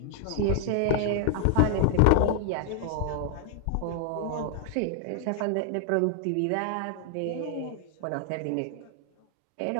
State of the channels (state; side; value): different; both; correlation 0.00